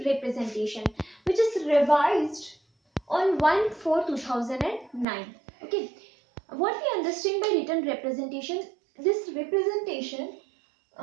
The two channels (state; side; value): drops out; left; at 5.1 s